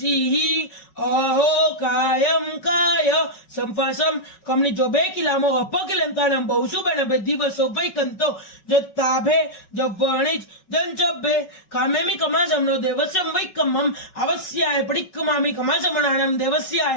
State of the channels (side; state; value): right; late; 5.3 ms